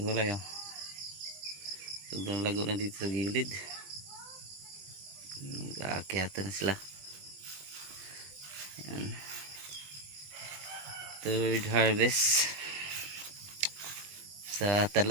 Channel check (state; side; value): late; left; 21 ms